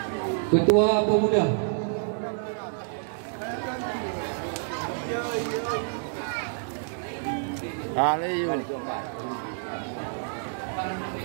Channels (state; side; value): silent; left; digital silence